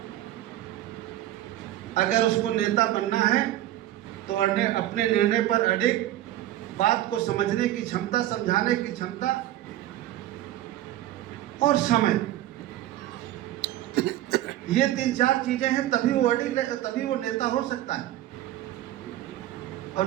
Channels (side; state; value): left; quieter; 13.8 dB